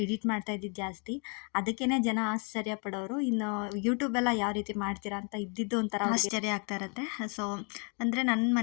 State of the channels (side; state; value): right; quieter; 36.8 dB